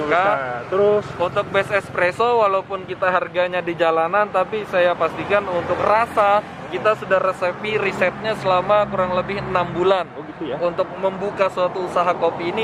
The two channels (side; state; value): both; identical; correlation 1.00